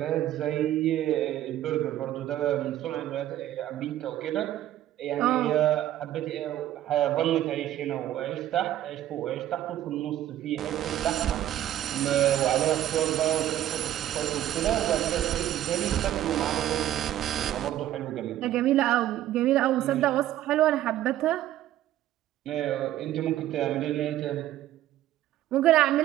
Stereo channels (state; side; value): quieter; left; 12.9 dB